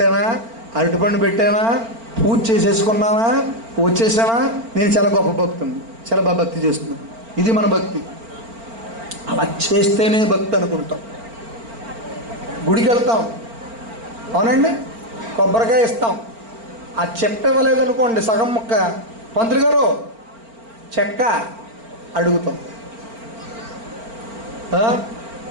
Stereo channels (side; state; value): left; late; 4.4 ms